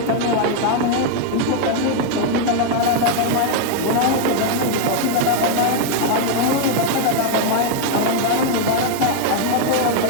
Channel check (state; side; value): different; both; correlation 0.00